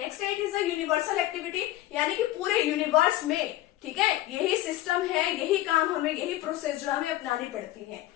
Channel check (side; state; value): right; quieter; 15.0 dB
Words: it is a universal activity, यानी कि पूरे यूनिवर्स में, ठीक है, यही सिस्टम है, यही काम हमें, यही प्रोसेस जो हमें अपनानी पड़ती है।